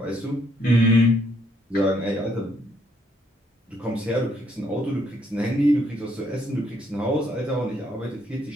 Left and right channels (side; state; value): both; normal; correlation 0.70